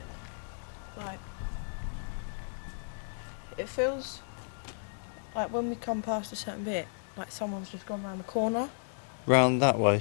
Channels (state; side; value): silent; right; digital silence